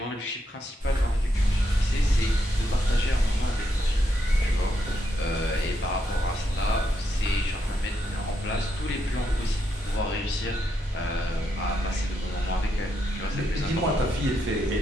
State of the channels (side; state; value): both; normal; correlation 0.80